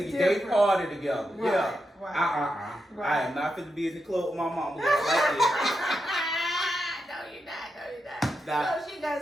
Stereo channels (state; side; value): normal; both; correlation 0.86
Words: party together. Right. Yeah. Right. I am not fit to be in the club with my mama like that. No, you're not. No, she